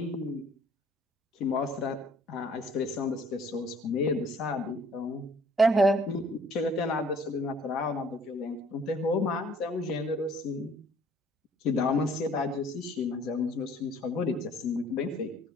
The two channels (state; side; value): normal; both; correlation 0.57